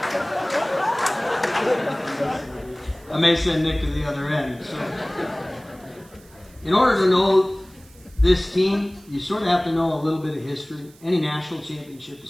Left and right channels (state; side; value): noise; right; hiss, 26 dB below the sound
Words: I may send Nick to the other end. So, in order to know this team, you sort of have to know a little bit of history. Any national championship is